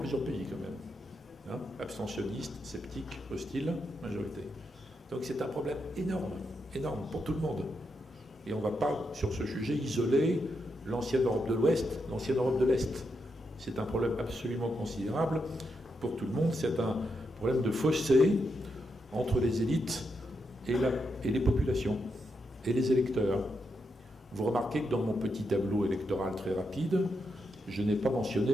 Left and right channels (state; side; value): normal; both; correlation 0.83